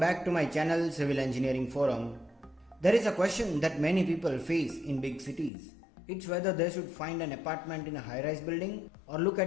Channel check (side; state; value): right; drops out; at 5.5 s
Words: to my channel Civil Engineering Forum. There is a question that many people face in big cities. It's whether they should find an apartment in a high-rise building or look